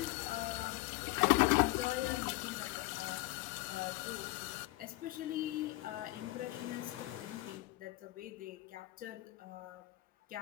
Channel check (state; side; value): quieter; right; 20.2 dB